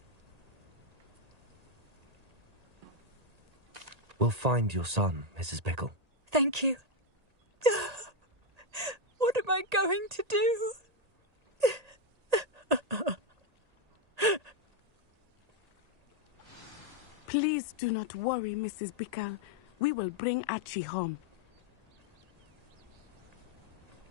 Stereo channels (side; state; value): left; late; 1.8 ms